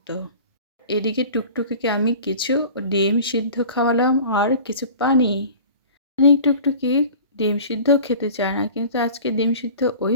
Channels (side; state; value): both; inverted; correlation -0.41